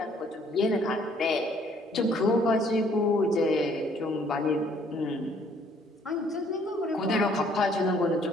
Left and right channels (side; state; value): both; normal; correlation 0.62